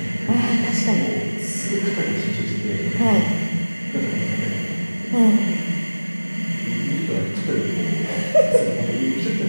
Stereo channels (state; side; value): inverted; both; correlation -1.00